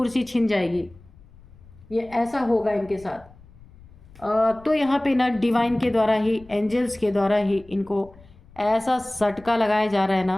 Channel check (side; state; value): left; noise; rumble, 24 dB below the sound